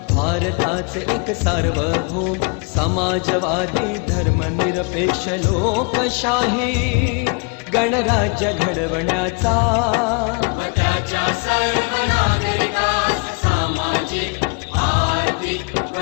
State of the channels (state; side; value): quieter; right; 34.4 dB